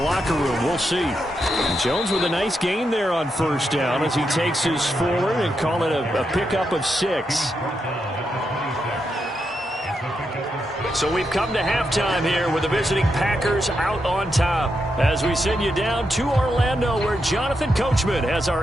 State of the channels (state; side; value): normal; both; correlation 0.84